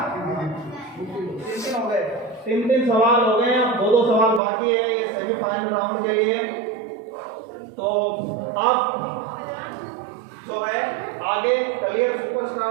3 हो गए। 3 सवाल हो गए। अब 2 सवाल बाकी है ये सेमीफाइनल राउंड के लिए। तो अब जो है आगे कलियर सुपरस्टार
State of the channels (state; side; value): drops out; left; at 4.4 s